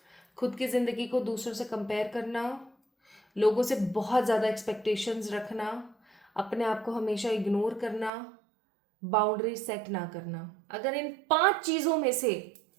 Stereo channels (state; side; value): drops out; left; at 8.1 s